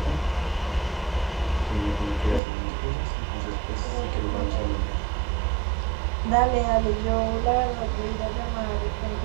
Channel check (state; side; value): drops out; left; at 2.4 s